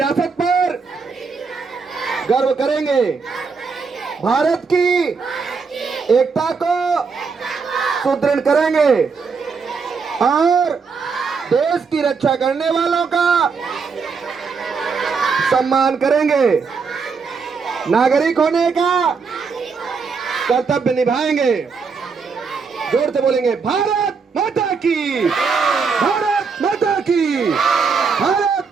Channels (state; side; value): quieter; left; 5.2 dB